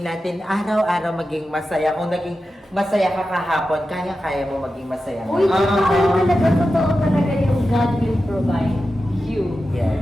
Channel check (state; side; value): normal; both; correlation 0.92